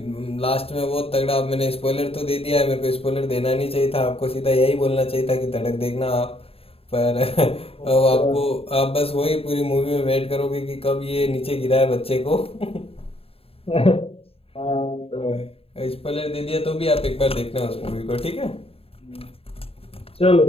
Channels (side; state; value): right; late; 0.28 ms